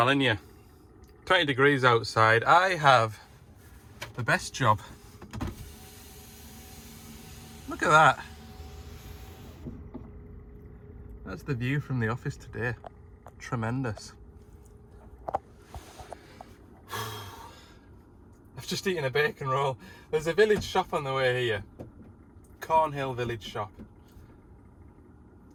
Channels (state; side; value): identical; both; correlation 1.00